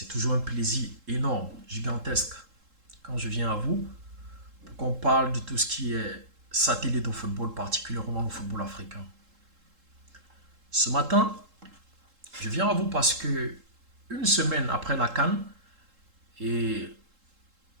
toujours un plaisir énorme, gigantesque, quand je viens à vous pour qu'on parle de tout ce qui est satellite au football, particulièrement le football africain. Ce matin, je viens à vous parce que une semaine après la CAN, et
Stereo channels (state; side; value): late; left; 3.7 ms